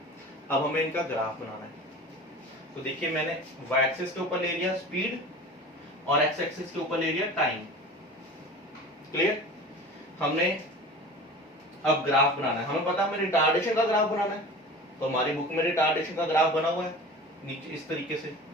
अब हमें इनका ग्राफ बनाना है, तो देखिए मैंने y एक्सिस के ऊपर ले लिया स्पीड और x एक्सिस के ऊपर ले लिया टाइम। क्लियर? हमने अब ग्राफ बनाना है, हमें पता है हमें रिटार्डेशन का ग्राफ बनाना है, तो हमारी बुक में रिटार्डेशन का ग्राफ बना हुआ है नीचे इस तरीके से।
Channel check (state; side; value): normal; both; correlation 0.37